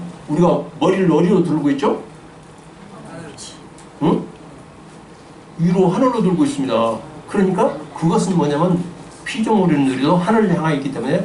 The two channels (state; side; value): identical; both; correlation 1.00